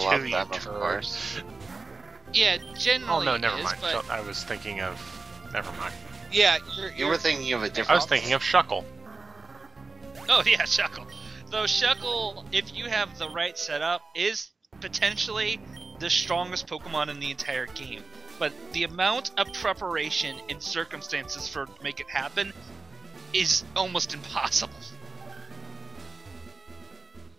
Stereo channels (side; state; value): left; quieter; 4.0 dB